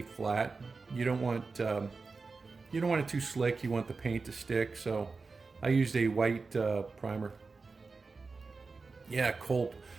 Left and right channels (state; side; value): quieter; left; 4.2 dB